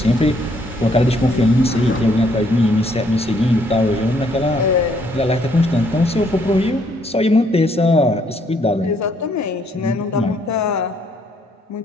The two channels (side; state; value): both; normal; correlation 0.68